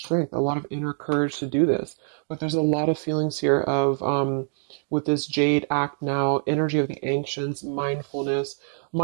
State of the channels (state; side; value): silent; left; digital silence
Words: a lot of inner courage to do this. But there's a lot of feelings here of, with this Jade, act now, energy of the ancients, mindfulness.